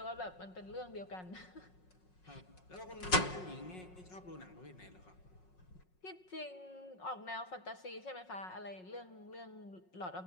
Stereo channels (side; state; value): right; late; 5.5 ms